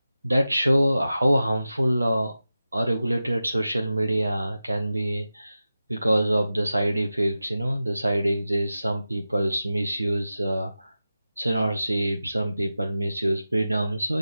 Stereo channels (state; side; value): inverted; both; correlation -0.93